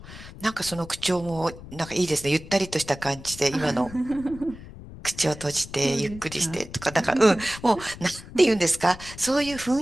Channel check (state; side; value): noise; left; rumble, 15 dB below the sound